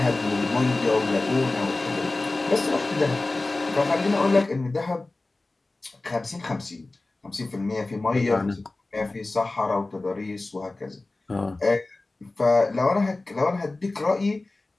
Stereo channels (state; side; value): quieter; right; 3.1 dB